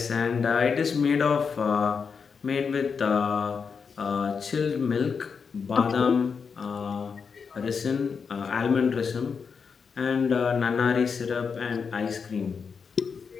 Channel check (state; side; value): quieter; right; 5.8 dB